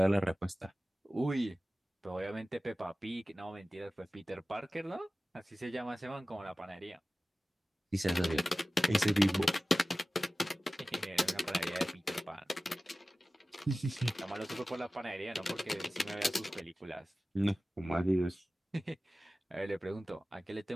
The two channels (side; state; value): both; normal; correlation 0.96